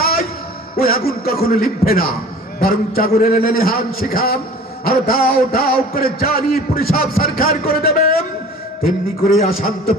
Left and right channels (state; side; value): normal; both; correlation 0.44